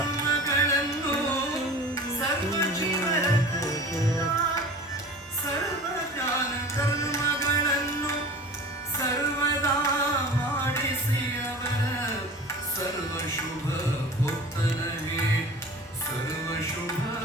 ಸರ್ವ ಜೀವನ ಸರ್ವ ಜ್ಞಾನ ಕರ್ಮಗಳನ್ನು ಸರ್ವದಾ ಮಾಡಿಸಿ ಅವರ ಸರ್ವ ಶುಭ ಭೋಕ್ತನಗೆ ಸರ್ವ ಶುಭ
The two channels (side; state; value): both; normal; correlation 0.39